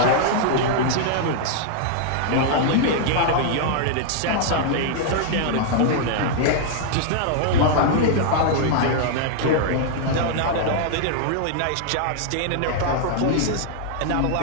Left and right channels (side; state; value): both; different; correlation -0.01